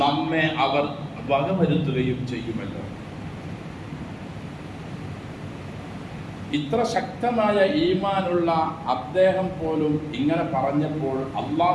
നമ്മെ അവർ വകവരുത്തുകയും ചെയ്യുമല്ലോ. ഇത്ര ശക്തമായ ഈമാനുള്ള അദ്ദേഹം പോലും ഇങ്ങനെ പറഞ്ഞപ്പോൾ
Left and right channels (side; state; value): both; identical; correlation 1.00